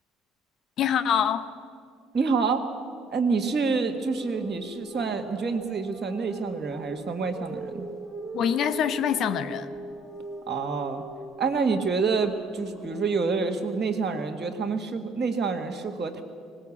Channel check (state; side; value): normal; both; correlation 0.59